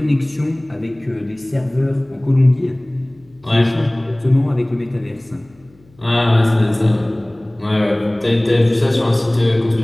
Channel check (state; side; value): noise; left; hum, 30 dB below the sound